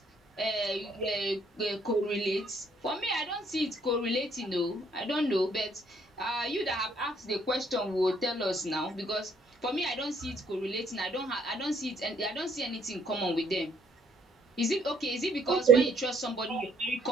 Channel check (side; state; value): both; normal; correlation 0.66